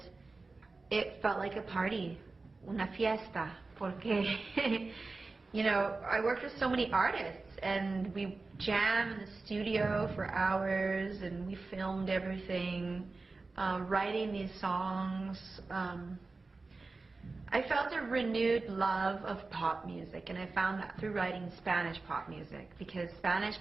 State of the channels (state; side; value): quieter; left; 3.7 dB